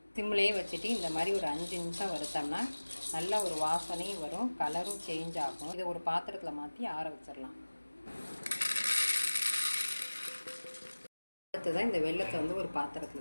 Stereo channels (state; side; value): inverted; both; correlation -1.00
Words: சிம்லேயே வச்சுட்டு இந்த மாதிரி ஒரு 5 நிமிஷம் வறுத்தோம்னா நல்ல ஒரு வாசனையும் வரும், கலரும் சேஞ்ச் ஆகும். இதை ஒரு பாத்திரத்தில் மாற்றி ஆற வச்சிடலாம். அடுத்ததான் இந்த வெல்லத்தை வந்து ஒரு